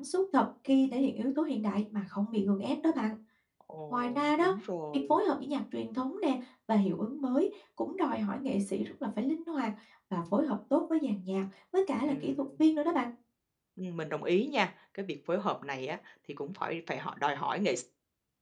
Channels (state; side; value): identical; both; correlation 1.00